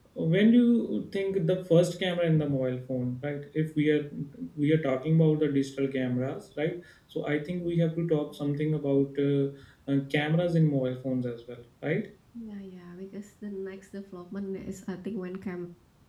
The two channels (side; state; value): both; identical; correlation 1.00